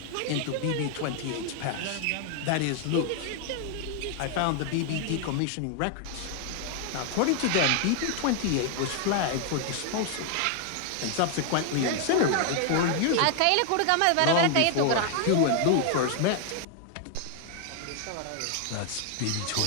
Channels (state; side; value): different; both; correlation 0.00